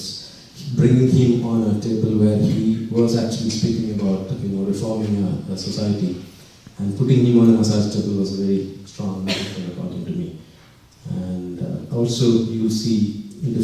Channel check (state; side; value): identical; both; correlation 1.00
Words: bringing him on a table where he was actually speaking about reforming a society, and putting him on a massage table was a very strong metaphor according to me. And also you'll see